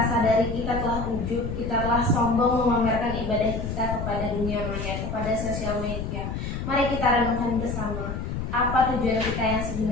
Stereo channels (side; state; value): left; noise; rumble, 4 dB below the sound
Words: kita telah ujub, kita telah sombong memamerkan ibadah kita kepada dunia maya, kepada sosial media. Mari kita renungkan bersama, apa tujuan kita yang